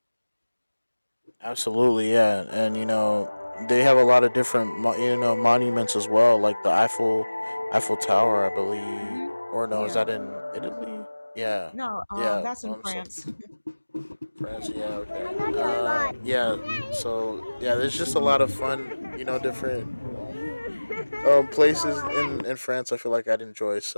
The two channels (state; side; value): inverted; both; correlation -1.00